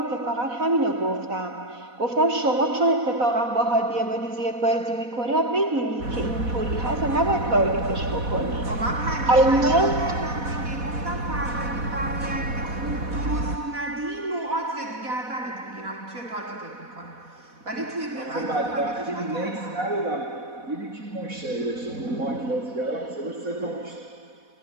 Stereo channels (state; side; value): late; left; 4.1 ms